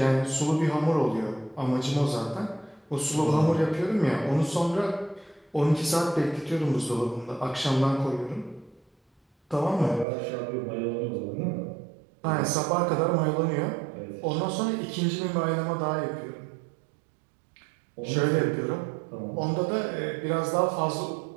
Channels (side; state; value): left; drops out; at 10.1 s